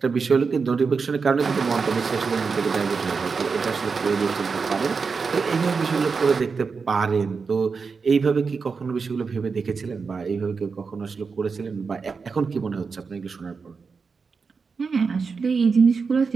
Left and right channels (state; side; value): quieter; left; 5.1 dB